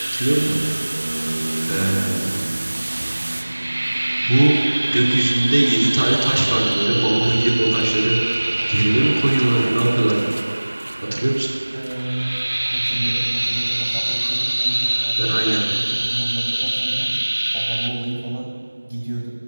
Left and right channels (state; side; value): inverted; both; correlation -1.00